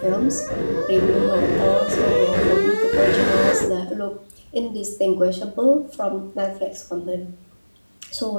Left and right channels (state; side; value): inverted; both; correlation -1.00